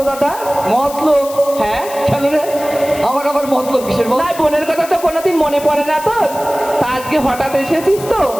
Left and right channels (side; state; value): left; noise; hiss, 14 dB below the sound